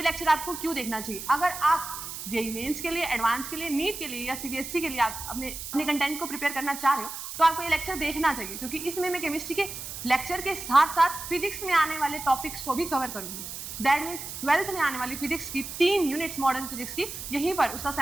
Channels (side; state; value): right; noise; hiss, 8 dB below the sound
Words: लेक्चर आपको क्यों देखना चाहिए? अगर आप जेईई मेंस के लिए, एडवांस के लिए, नीट के लिए या सीबीएसई के लिए आप अपने कंटेंट को प्रिपेयर करना चाह रहे हो तो आपको ये लेक्चर देखना चाहिए, क्योंकि इसमें मैं केमिस्ट्री के लेक्चर के साथ साथ फिजिक्स में आने वाले टॉपिक्स को भी कवर करूंगी। दैट मीन्स 12th में आने वाली फिजिक्स की 3 यूनिट्स मॉडर्न फिजिक्स की, यहीं पर उसका